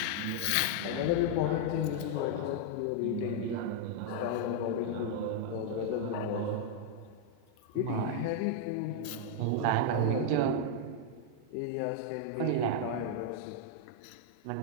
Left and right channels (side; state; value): both; different; correlation -0.01